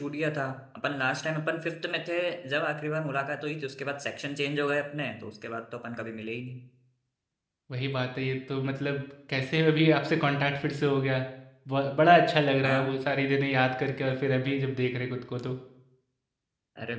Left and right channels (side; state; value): both; identical; correlation 1.00